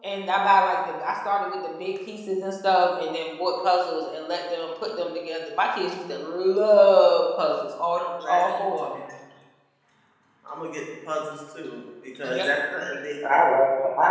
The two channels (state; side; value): identical; both; correlation 1.00